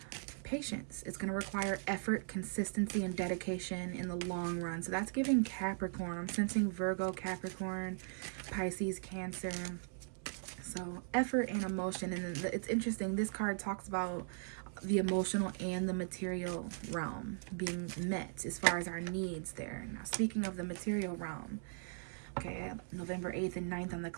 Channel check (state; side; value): silent; left; 52 dB below the other